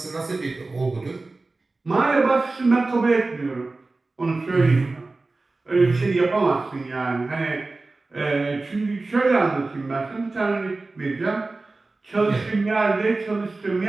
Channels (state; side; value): quieter; left; 3.4 dB